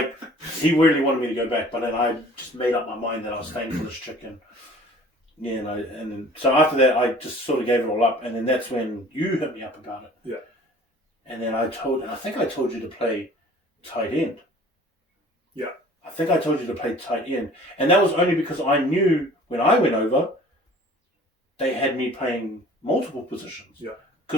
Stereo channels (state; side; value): normal; both; correlation 0.49